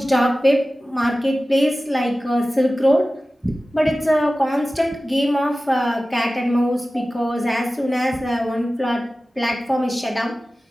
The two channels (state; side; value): normal; both; correlation 0.96